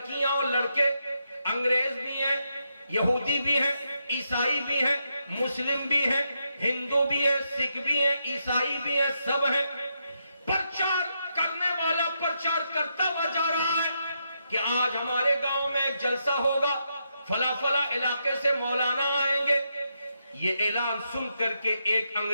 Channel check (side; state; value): both; inverted; correlation -0.82